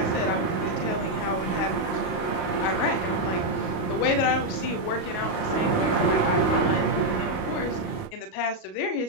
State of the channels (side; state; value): right; late; 38 ms